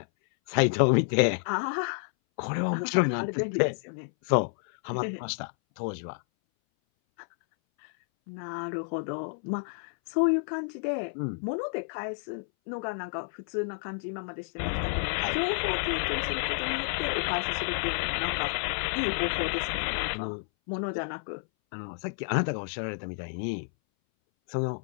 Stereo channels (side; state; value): right; silent; 58 dB below the other